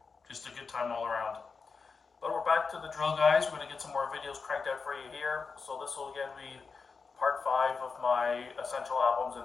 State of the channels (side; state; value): right; quieter; 4.9 dB